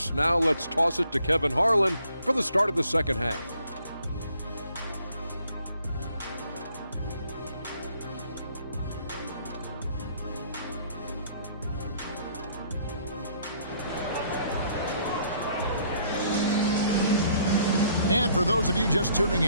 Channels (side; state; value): both; inverted; correlation -0.63